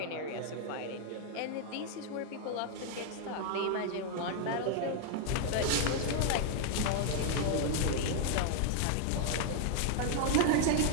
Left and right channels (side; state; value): both; different; correlation 0.00